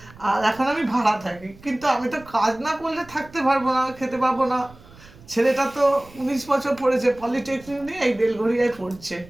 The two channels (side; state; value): right; noise; rumble, 22 dB below the sound